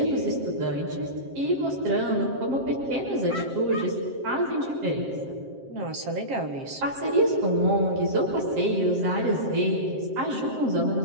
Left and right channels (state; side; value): late; left; 7.6 ms